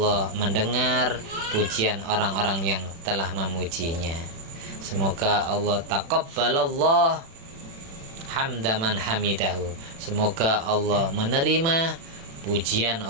mendengar pujian orang-orang yang telah memujinya. Semoga Allah taqabbalallah hamdaman hamidahu. Semoga Allah menerima pujian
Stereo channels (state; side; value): late; left; 36 ms